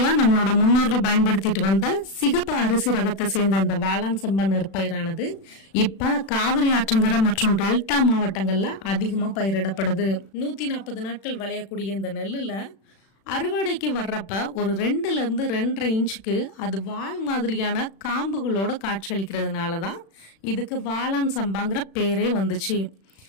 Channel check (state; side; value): late; right; 36 ms